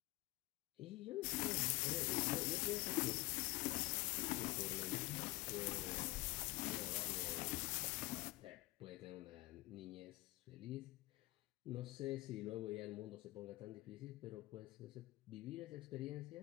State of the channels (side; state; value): right; quieter; 20.4 dB